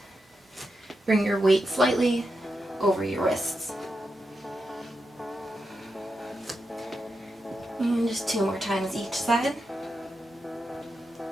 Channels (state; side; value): normal; both; correlation 0.87